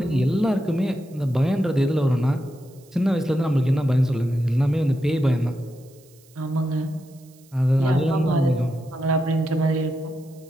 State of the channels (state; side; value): noise; right; hiss, 29 dB below the sound